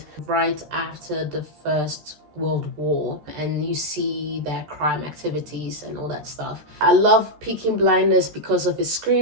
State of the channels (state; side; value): late; left; 13 ms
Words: right after the First World War, and you see their crime activities and all that stuff. I love Peaky Blinders because of its